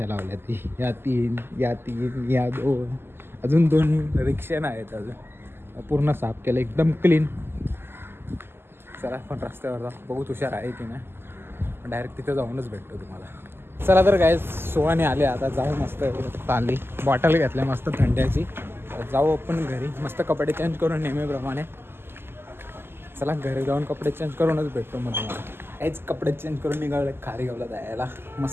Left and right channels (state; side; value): late; left; 0.11 ms